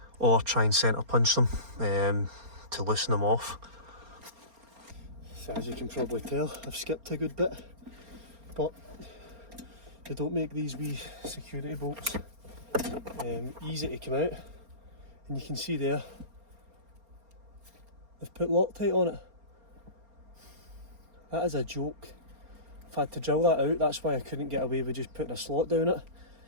or try and centre punch them to loosen them off. So as you can probably tell, I've skipped a good bit, but they don't make these wee security bolts easy to come out, and you can see there they've put Loctite on it. That is a joke. I've had to drill that out. That's why I couldn't get away with just putting a slot down it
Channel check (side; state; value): left; late; 4.3 ms